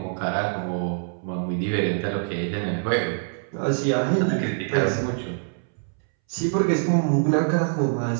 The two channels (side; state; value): left; silent; 62 dB below the other